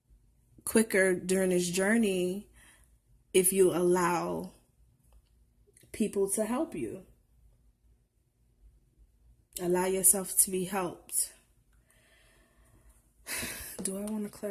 quicker during this journey if you allow people to help you. Allow yourself to be helped. Do I want to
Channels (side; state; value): both; identical; correlation 1.00